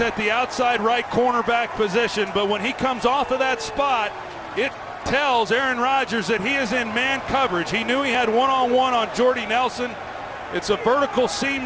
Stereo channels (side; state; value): both; identical; correlation 1.00